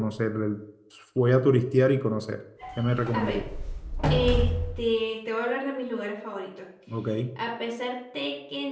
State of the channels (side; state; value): both; identical; correlation 1.00